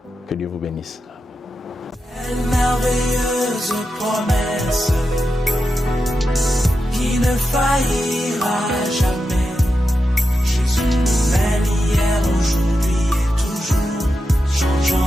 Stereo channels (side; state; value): both; normal; correlation 0.89